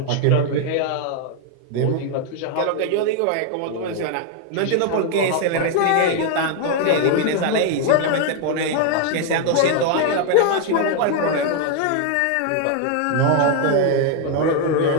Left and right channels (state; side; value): different; both; correlation 0.00